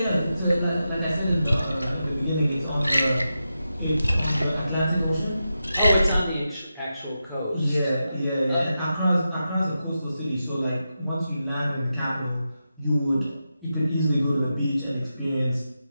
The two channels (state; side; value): inverted; both; correlation -0.89